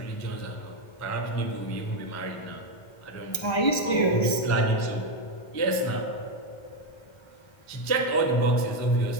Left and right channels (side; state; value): right; late; 1.3 ms